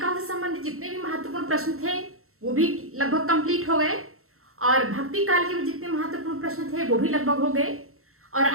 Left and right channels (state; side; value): late; left; 0.63 ms